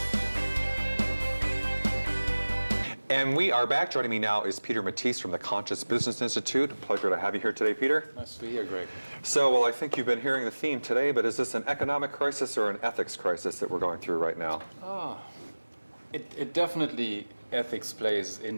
And we are back. Joining me now is Peter Matisse from the Conscious Business Institute. Pleasure to have you here today, Peter. Nice to be here, Greg. So, well, I think you've been hearing the theme today, but is this an economic crisis or an ethics crisis that we're going through right now? It definitely, ethics plays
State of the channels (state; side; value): inverted; both; correlation -1.00